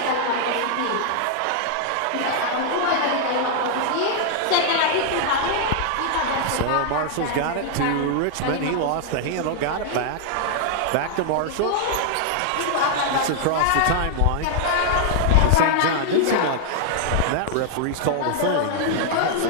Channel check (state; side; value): different; both; correlation 0.00